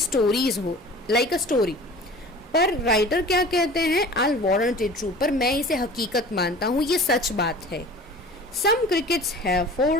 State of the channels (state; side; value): normal; both; correlation 0.42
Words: हो, लाइक अ स्टोरी। पर राइटर क्या कहते हैं? आई वारंट इट ट्रू, पर मैं इसे हकीकत मानता हूँ, ये सच बात है। Some crickets have